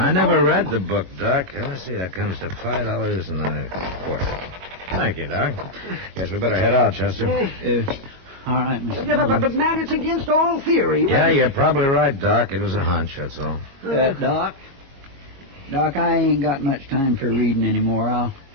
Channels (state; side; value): late; left; 22 ms